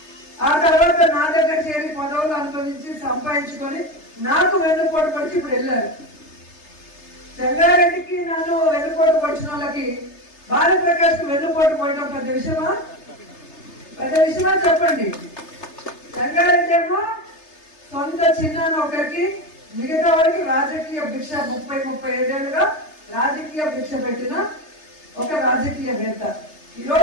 ఆ తర్వాత నా దగ్గర చేరి పదవులు అనుభవించి సంపాదించుకొని నాకు వెన్నుపోటు పొడిచి ఇప్పుడు వెళ్ళారు. సంగారెడ్డికి నన్ను వెన్నుపోటు పొడిచిన వాళ్ళకి భారతప్రకాష్ కు వెన్నుపోటు పోయడం పెద్ద విషయమా? పెద్ద విషయమా చెప్పండి. సంగారెడ్డి ఏమో సొంత చిన్నాన్న ఒకరికి, మిగతా వాడికి రాజకీయ భిక్ష 30-35 ఏళ్ళుగా రాజకీయ భిక్ష పెట్టిన ఒక రాజకీయవేత్త.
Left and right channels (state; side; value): late; right; 3.3 ms